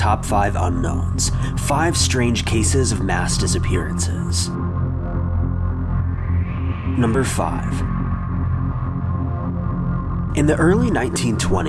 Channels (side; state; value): both; identical; correlation 1.00